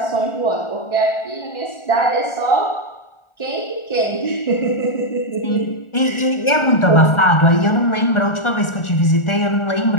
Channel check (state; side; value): late; right; 1.4 ms